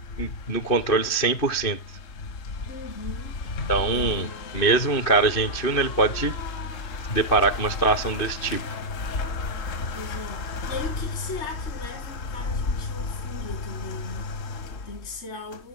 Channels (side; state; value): right; late; 3.2 ms